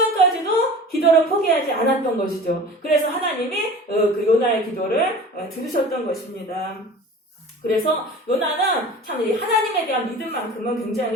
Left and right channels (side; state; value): both; normal; correlation 0.39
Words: 기도를 포기하지 않았던 것이죠. 그래서 하나님이 그 요나의 기도를 들으셨던 것입니다. 그래서 요나는 참 하나님에 대한 믿음만큼은